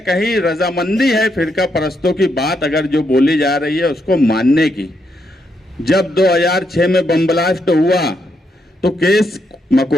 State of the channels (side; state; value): both; normal; correlation 0.79